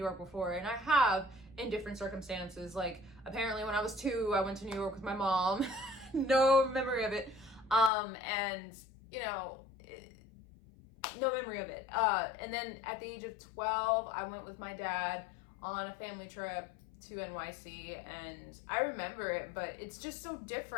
before? And I have, in different circumstances. Like, apparently when I was 2, I went to New York with my mom. No memory of it. And, no memory of it. And then at the age of 12, I went with my dad on a family trip to NYC, and I remember it, but it's just so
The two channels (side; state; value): right; drops out; at 7.9 s